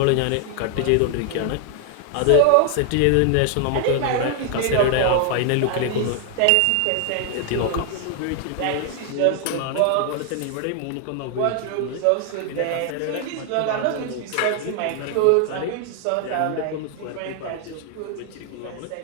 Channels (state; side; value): different; both; correlation 0.00